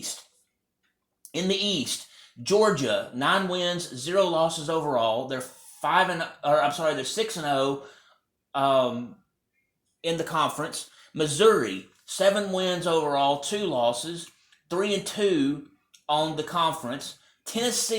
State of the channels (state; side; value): identical; both; correlation 1.00